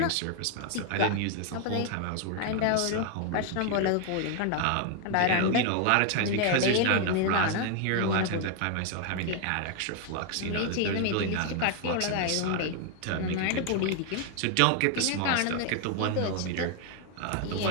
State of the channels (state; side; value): different; both; correlation 0.01